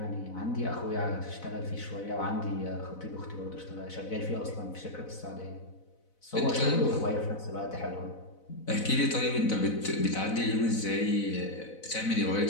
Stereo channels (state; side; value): late; right; 4.0 ms